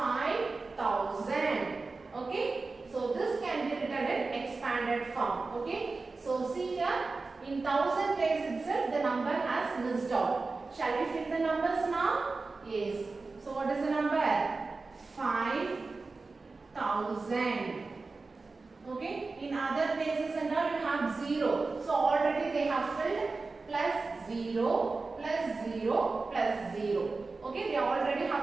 Okay, so this can be written in expanded form. Okay, so see here in 1,000 place itself the number has missed out. Shall we fill the numbers now? Yes. So what is the number? 5,000. Okay, in other places and all you have 0. So already they have filled plus 0 plus 0 plus 0. Okay, they already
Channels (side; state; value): left; quieter; 3.9 dB